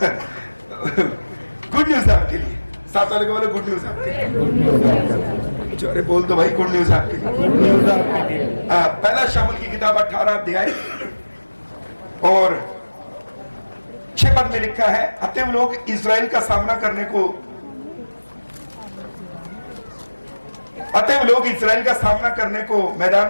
गुड न्यूज आपके लिए, साथ वाले को बोले गुड न्यूज आपके लिए। अरे बोल दो भाई, गुड न्यूज आपके लिए। पहला शामुल की किताब 18 अध्याय और 6 पद में लिखा है, अतएव लोग इजराइल का सामना करने को मैदान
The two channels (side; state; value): both; inverted; correlation -1.00